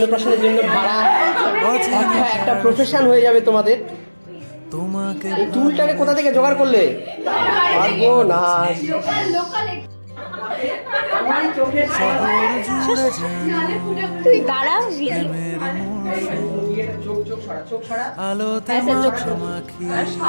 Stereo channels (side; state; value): both; inverted; correlation -1.00